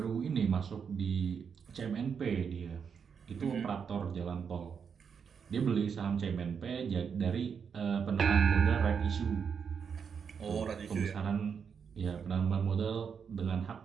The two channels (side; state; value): left; quieter; 6.7 dB